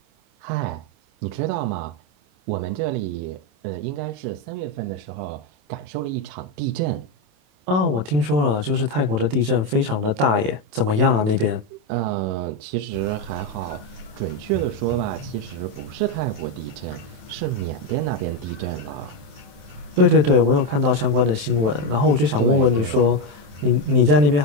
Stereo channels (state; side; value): late; left; 27 ms